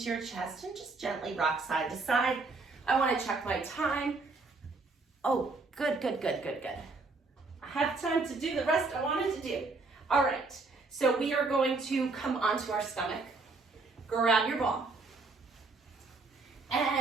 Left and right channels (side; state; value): left; quieter; 3.8 dB